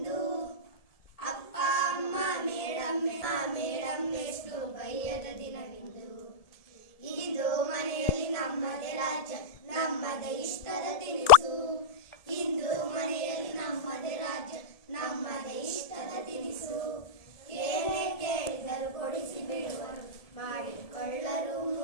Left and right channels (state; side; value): late; right; 1.7 ms